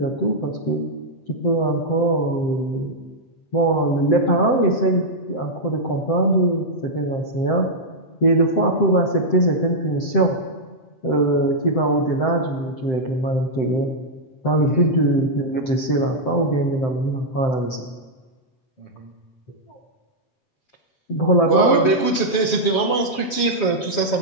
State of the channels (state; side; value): late; right; 7.3 ms